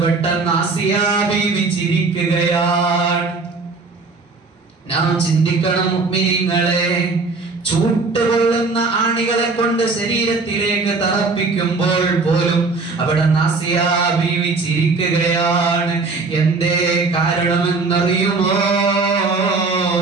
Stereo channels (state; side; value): quieter; left; 4.0 dB